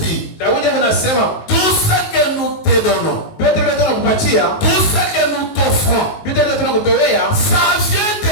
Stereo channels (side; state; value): right; late; 19 ms